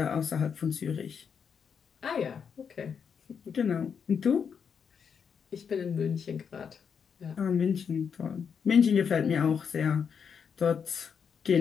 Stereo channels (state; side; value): quieter; right; 6.8 dB